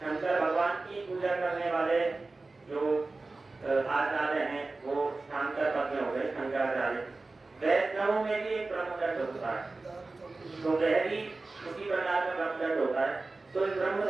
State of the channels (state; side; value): quieter; left; 3.5 dB